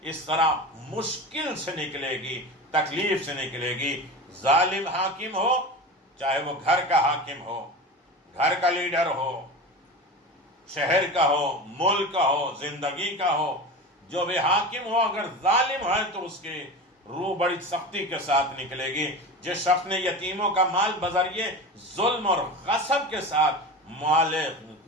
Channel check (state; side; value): normal; both; correlation 0.29